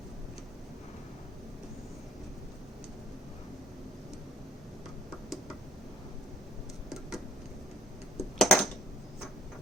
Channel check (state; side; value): normal; both; correlation 0.56